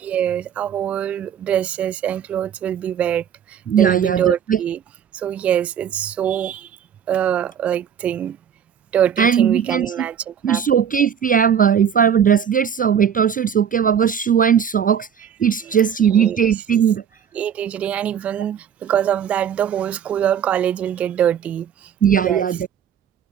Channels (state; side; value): quieter; left; 8.3 dB